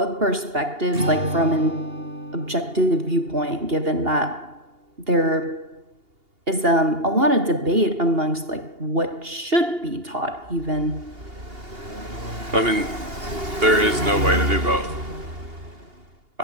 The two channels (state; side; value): late; left; 2.8 ms